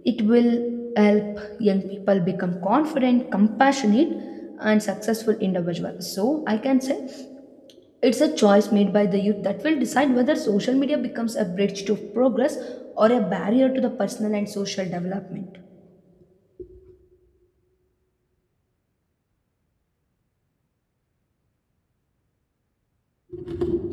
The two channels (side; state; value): both; identical; correlation 1.00